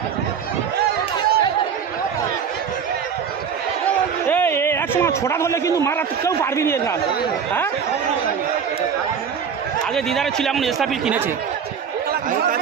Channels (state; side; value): quieter; left; 7.0 dB